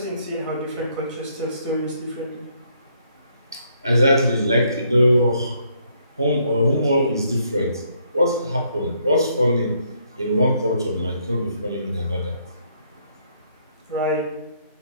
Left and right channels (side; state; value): both; inverted; correlation -0.70